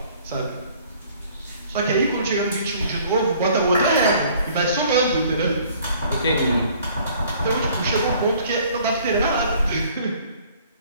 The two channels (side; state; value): both; inverted; correlation -0.56